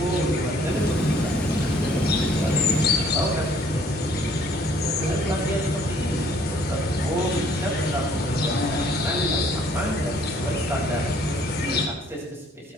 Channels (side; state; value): both; normal; correlation 0.60